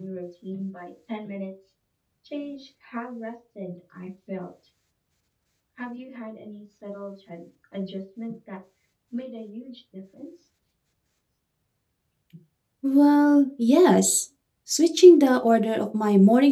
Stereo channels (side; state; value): both; identical; correlation 1.00